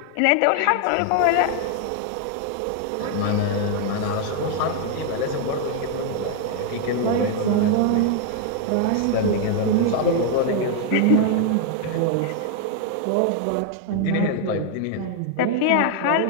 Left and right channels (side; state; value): both; different; correlation 0.00